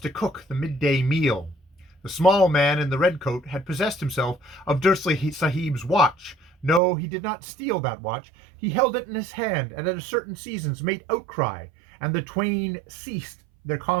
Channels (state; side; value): drops out; left; at 6.8 s